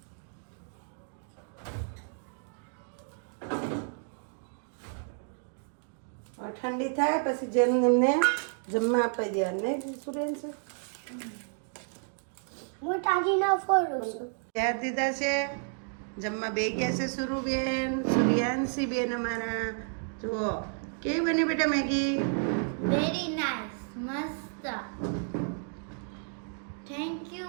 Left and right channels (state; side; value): silent; left; 57 dB below the other